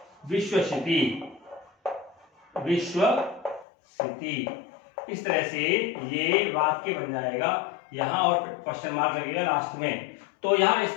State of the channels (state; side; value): drops out; right; at 3.7 s